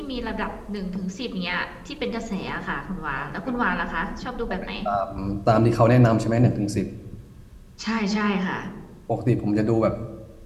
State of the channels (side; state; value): both; identical; correlation 1.00